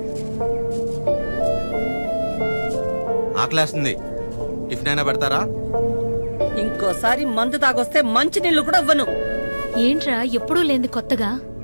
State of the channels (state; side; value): inverted; both; correlation -1.00